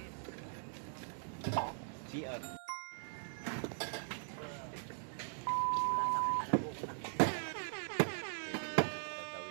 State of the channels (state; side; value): silent; left; digital silence